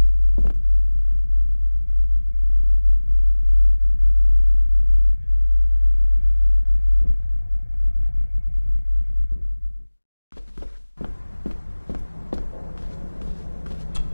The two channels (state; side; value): inverted; both; correlation -1.00